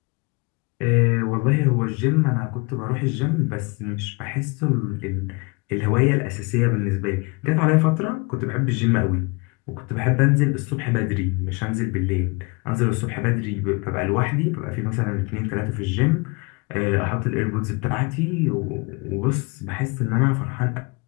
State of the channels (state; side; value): quieter; right; 28.9 dB